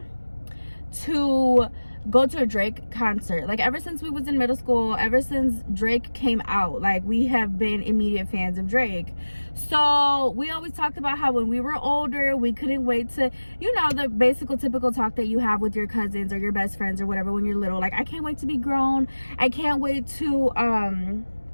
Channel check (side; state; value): both; inverted; correlation -1.00